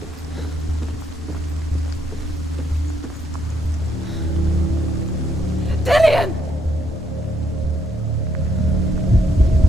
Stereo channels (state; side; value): normal; both; correlation 0.74